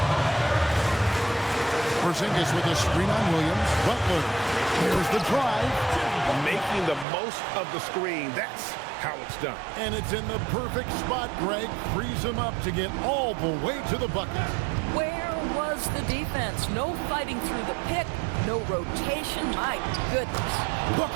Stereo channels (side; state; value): left; drops out; at 7.1 s